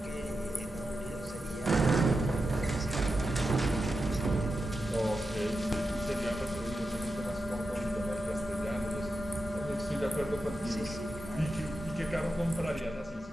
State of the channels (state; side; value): normal; both; correlation 0.89